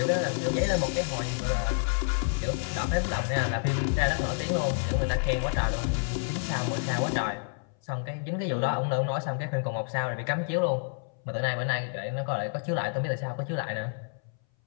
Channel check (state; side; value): silent; right; 59 dB below the other